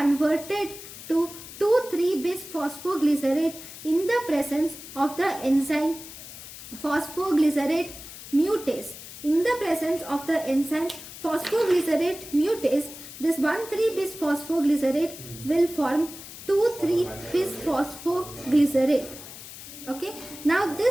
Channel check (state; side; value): noise; left; hiss, 14 dB below the sound